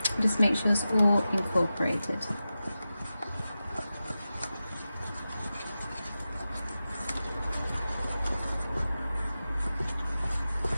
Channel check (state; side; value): inverted; both; correlation -0.93